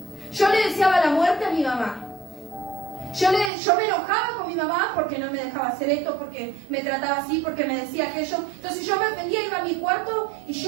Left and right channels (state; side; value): drops out; left; at 3.5 s